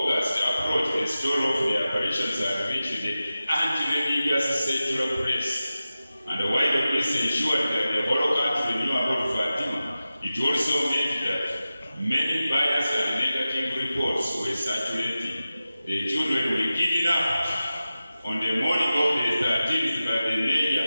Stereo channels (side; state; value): both; inverted; correlation -0.94